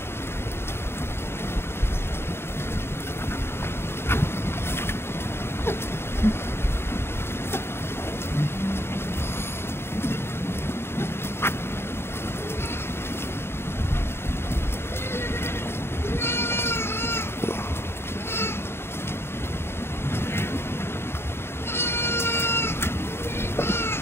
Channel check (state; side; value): late; right; 0.12 ms